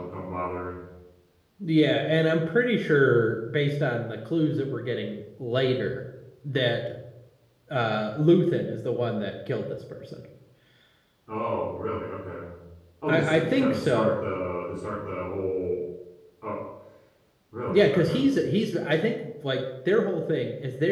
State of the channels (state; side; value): identical; both; correlation 1.00